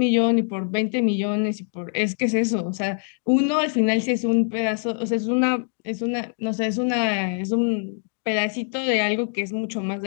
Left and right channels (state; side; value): silent; right; 63 dB below the other